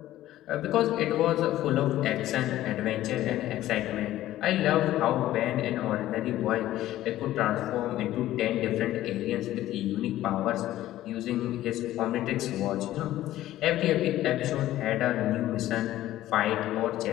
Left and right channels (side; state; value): right; quieter; 14.3 dB